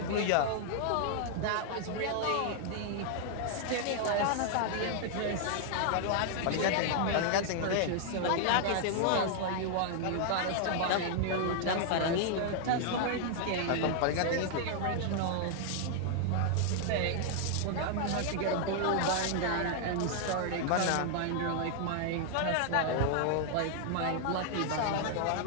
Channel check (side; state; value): both; different; correlation 0.00